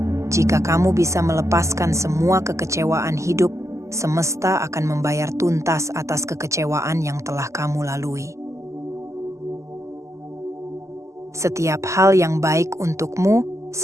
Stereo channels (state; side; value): late; left; 0.14 ms